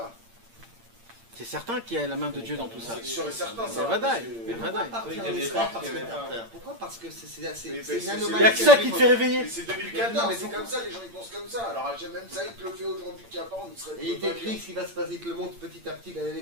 C'est certain qu'il y a la main de Dieu dans tout ça. C'est sûr et certain, ça. C'est vadaï. Mais C'est pourquoi vadaï. partir en Il y a des Israël gens parce qui que avaient t'as pas- peur? Pourquoi? Parce que c'est Mais une c'est- Il n'y anomalie. a que ça qui te fait réveiller. Mais c'est Non, 2014, mais c'est pourquoi- comme ça, les gens ils pensent comme ça. Alors même ça, il te le fait aujourd'hui qu'il n'y a pas, on serait Et il t'écrit ce qui va se passer, il te le montre petit à petit, les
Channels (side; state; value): left; late; 8.7 ms